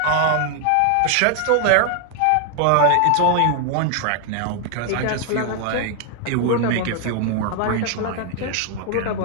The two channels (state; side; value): different; both; correlation 0.00